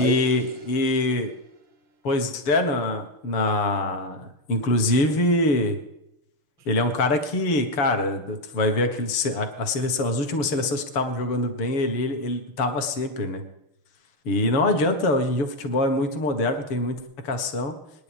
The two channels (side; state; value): right; late; 7.0 ms